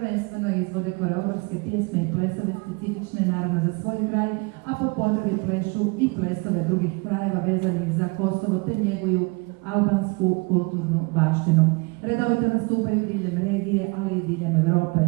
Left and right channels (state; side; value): quieter; left; 29.0 dB